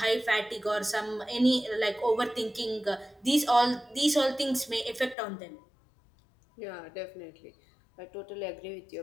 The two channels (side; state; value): right; drops out; at 5.2 s